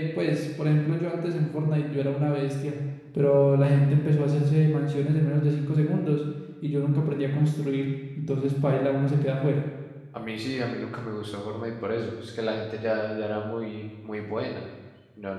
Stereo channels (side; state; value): both; identical; correlation 1.00